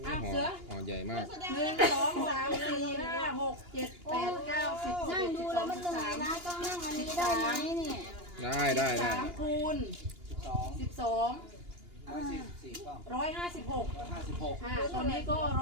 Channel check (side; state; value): left; late; 2.8 ms